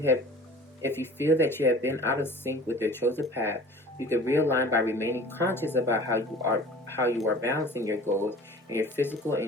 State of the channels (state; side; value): normal; both; correlation 0.44